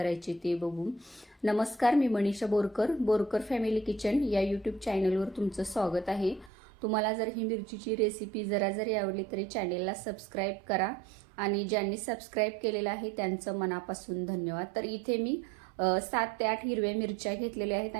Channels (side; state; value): left; drops out; at 6.5 s